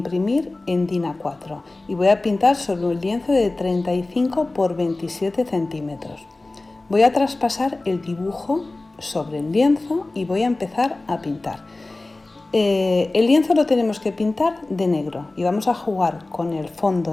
en DIN A4 y voy a pintar sobre un lienzo de 35 por 27 centímetros. Voy a traspasar el dibujo sobre el lienzo y voy a empezar a pintar. El lienzo lo tenemos que pintar de negro y vamos a jugar con el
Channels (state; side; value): quieter; right; 3.0 dB